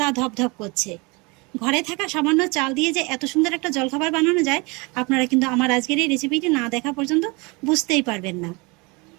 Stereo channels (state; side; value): quieter; left; 27.6 dB